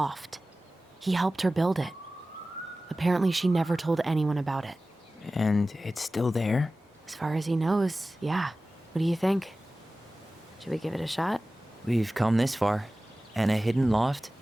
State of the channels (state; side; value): normal; both; correlation 0.96